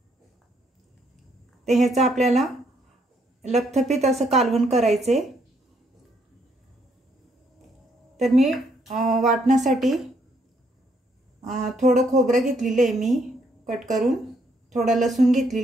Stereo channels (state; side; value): normal; both; correlation 0.72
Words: ते ह्याचा आपल्याला लपथपीत असं कालवण करायचे. तर मी वाटण्यासाठी थोडं खोबरं घेतलेलं आहे मी कट करून, थोडा लसूण